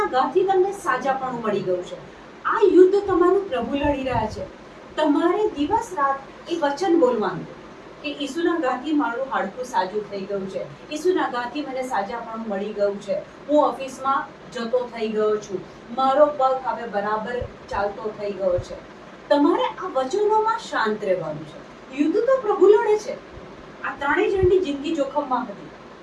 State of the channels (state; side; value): identical; both; correlation 1.00